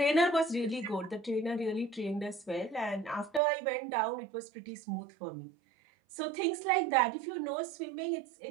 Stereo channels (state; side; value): drops out; left; at 3.4 s